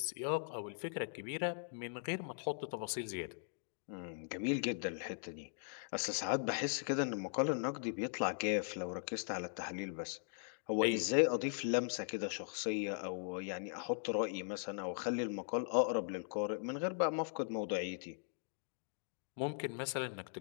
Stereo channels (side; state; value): right; silent; digital silence